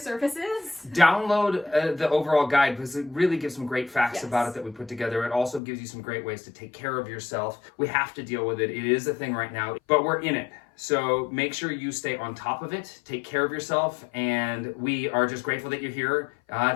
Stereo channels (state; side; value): drops out; right; at 5.6 s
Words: Download the overall guide, because it really gives some great facts about it that we put together. It also gives you some great ways to take care of yourself. We have to deal with it. It is a thing right now, but we're in it. So make sure you stay on top of it, take care of yourself, and we are just grateful that you're here